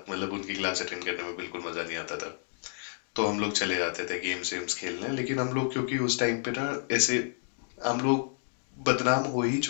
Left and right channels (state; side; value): silent; right; digital silence